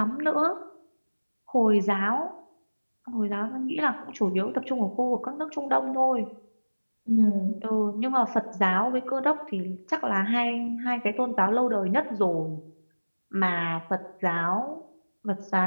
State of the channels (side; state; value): both; inverted; correlation -1.00